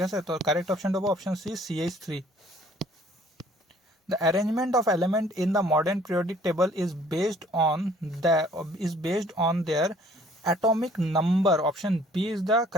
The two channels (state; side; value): normal; both; correlation 0.57